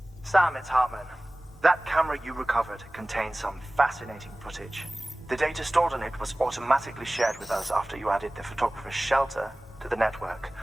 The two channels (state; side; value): normal; both; correlation 0.98